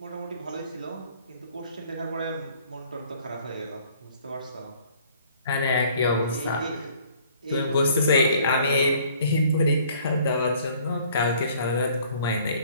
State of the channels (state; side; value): inverted; both; correlation -0.57